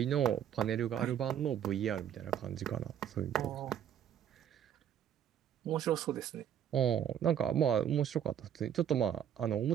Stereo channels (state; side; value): quieter; left; 9.6 dB